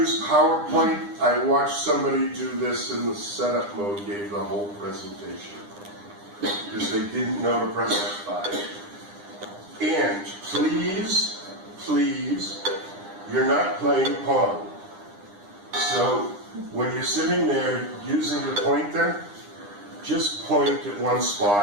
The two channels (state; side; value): late; left; 9.9 ms